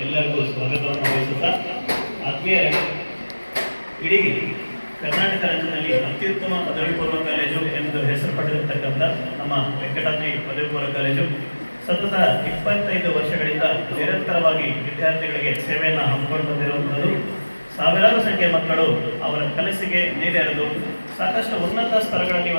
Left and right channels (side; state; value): both; inverted; correlation -1.00